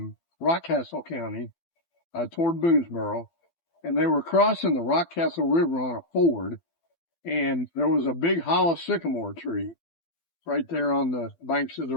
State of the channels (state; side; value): late; right; 12 ms